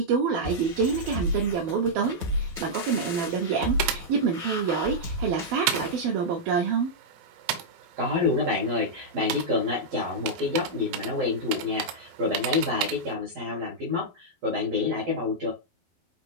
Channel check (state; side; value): late; left; 12 ms